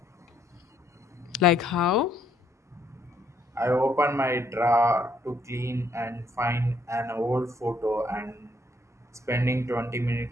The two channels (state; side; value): normal; both; correlation 0.70